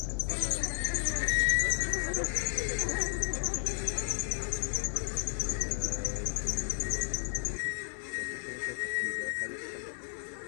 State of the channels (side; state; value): right; silent; digital silence